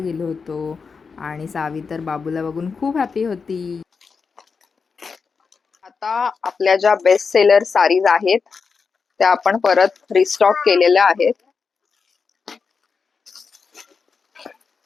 होतो. आणि सावी तर बाबूला बघून खूप हॅपी होती. आता आपल्या ज्या बेस्ट सेलर साडीज आहेत त्या आपण परत रिस्टॉक केलेल्या आहेत.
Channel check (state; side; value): quieter; right; 5.3 dB